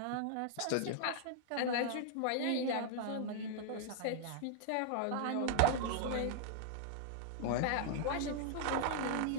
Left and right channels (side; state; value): both; different; correlation -0.01